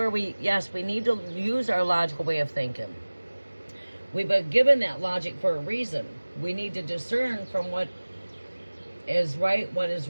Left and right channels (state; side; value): inverted; both; correlation -1.00